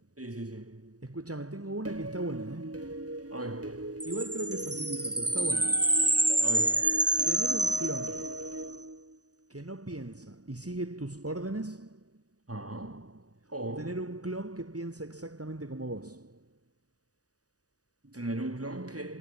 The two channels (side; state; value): left; late; 0.67 ms